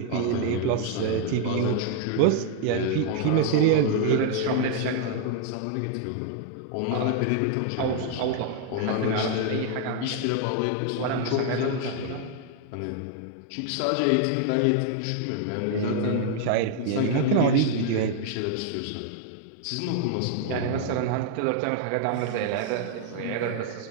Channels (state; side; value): different; both; correlation 0.00